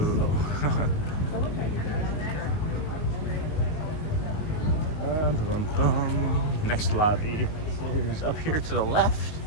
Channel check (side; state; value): right; late; 19 ms